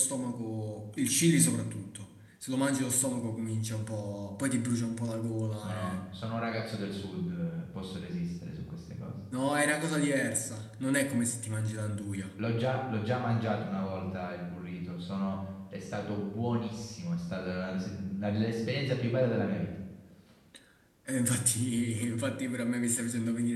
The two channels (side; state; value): both; identical; correlation 1.00